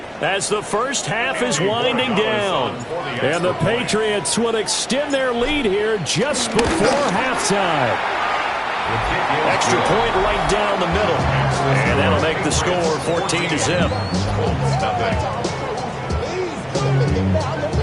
as the first half is winding down. And the Patriots will extend their lead here just before halftime. Extra point right down the middle. And that'll make the score 14-0.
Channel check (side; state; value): both; identical; correlation 1.00